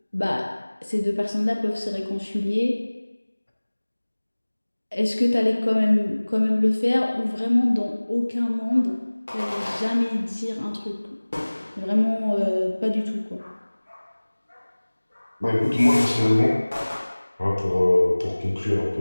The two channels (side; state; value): both; inverted; correlation -1.00